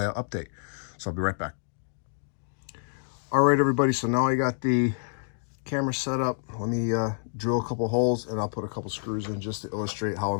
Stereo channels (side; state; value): right; silent; digital silence